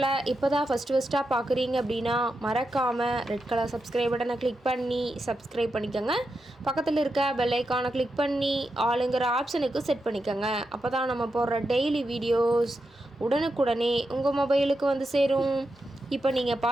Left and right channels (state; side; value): normal; both; correlation 0.87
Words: இப்போ தான் ஃபஸ்ட்டாக பார்க்குறீங்க அப்படின்னா மறக்காமல் ரெட் கலர் சப்ஸ்கிரைப் பட்டனை கிளிக் பண்ணி சப்ஸ்கிரைப் பண்ணிக்கோங்க. பக்கத்தில் இருக்க பெல் ஐக்கானை கிளிக் பண்ணி ஆளுங்கிற ஆப்ஷனுக்கு செட் பண்ணிக்கோங்க. அப்போ தான் நம்ம போடுற டெய்லி வீடியோஸ் உடனுக்குடனே உங்கள் மொபைலுக்கு வந்து சேரும். இப்போ நீங்கள்